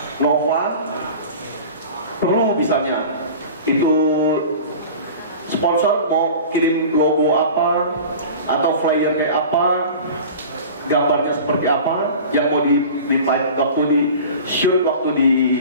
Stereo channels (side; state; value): both; inverted; correlation -0.38